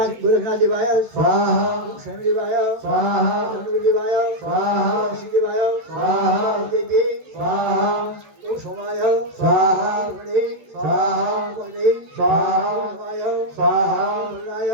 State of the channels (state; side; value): late; left; 14 ms